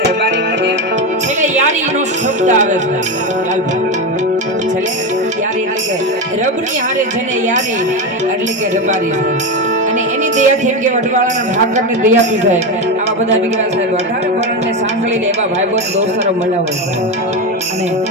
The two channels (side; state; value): both; normal; correlation 0.15